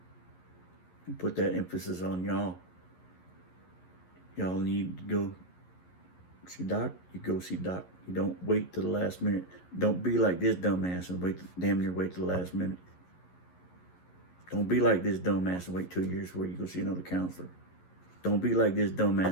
And put that emphasis on y'all. Y'all need to go see Doc, you go see Doc. You don't wait till the last minute. Don't be like this dumbass and damn near wait till the last minute. Don't be like this dumbass and wait 2 years before you go see another counselor. Don't be like this dumbass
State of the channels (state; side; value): late; right; 11 ms